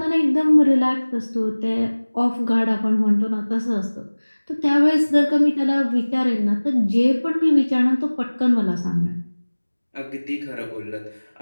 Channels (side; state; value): both; inverted; correlation -1.00